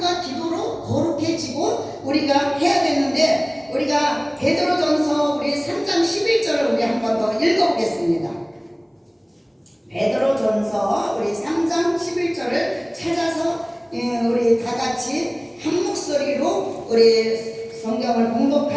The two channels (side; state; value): both; identical; correlation 1.00